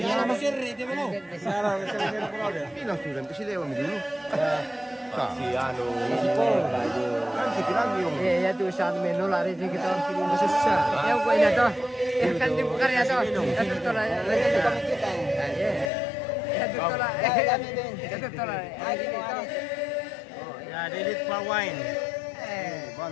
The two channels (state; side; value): drops out; right; at 15.9 s